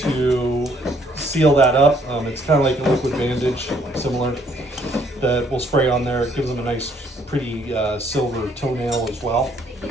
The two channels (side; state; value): both; normal; correlation 0.65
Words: seal that up. It's kind of like a liquid bandage, similar, that we'll spray on there. It gives them a nice, pretty silver toenail as well.